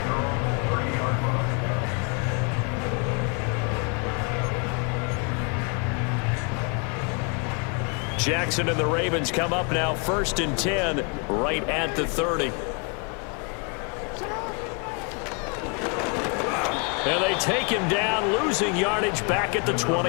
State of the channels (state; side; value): quieter; right; 34.8 dB